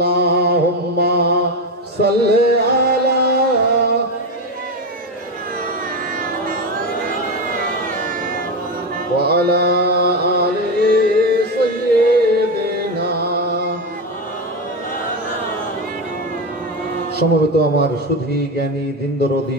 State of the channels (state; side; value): normal; both; correlation 0.15